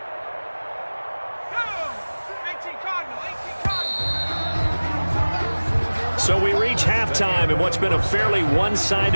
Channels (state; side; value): inverted; both; correlation -1.00